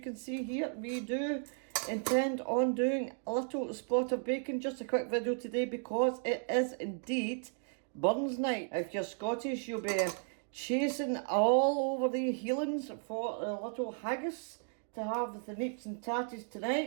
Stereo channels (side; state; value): left; silent; 55 dB below the other